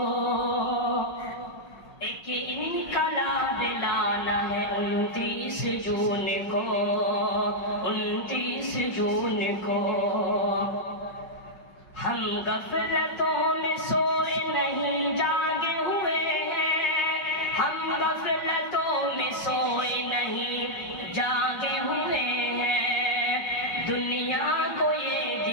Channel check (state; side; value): late; right; 5.3 ms